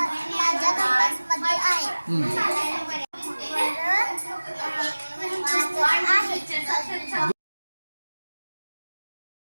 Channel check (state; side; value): inverted; both; correlation -1.00